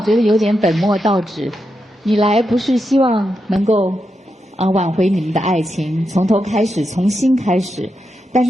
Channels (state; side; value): normal; both; correlation 0.86